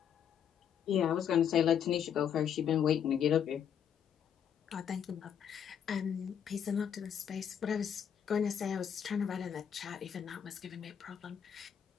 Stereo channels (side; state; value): right; quieter; 8.5 dB